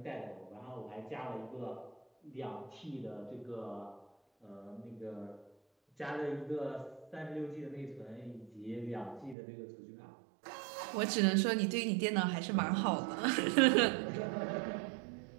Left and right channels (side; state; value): left; drops out; at 9.3 s